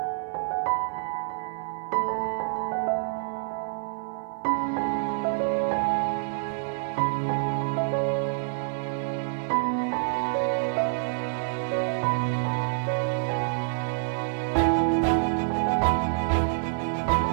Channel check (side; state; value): left; silent; 55 dB below the other